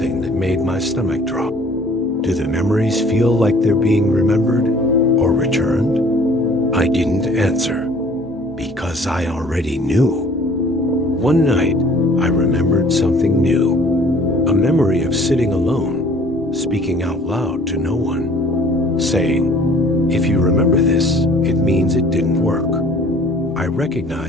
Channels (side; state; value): both; normal; correlation 0.53